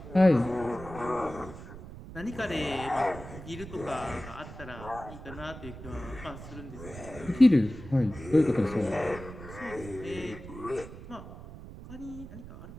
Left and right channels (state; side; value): noise; right; rumble, 13 dB below the sound